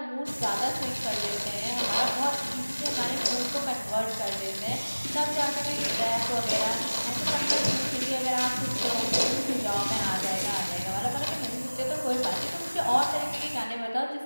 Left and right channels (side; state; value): both; inverted; correlation -1.00